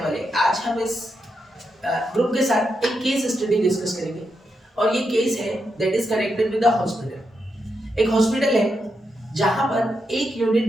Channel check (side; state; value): both; normal; correlation 0.84